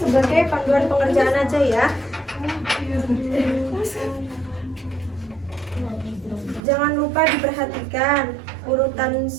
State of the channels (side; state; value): left; drops out; at 6.6 s